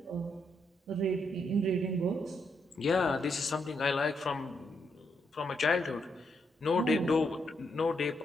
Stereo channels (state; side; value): normal; both; correlation 0.78